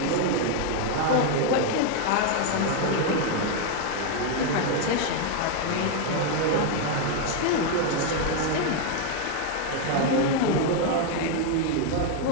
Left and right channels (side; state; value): both; different; correlation 0.01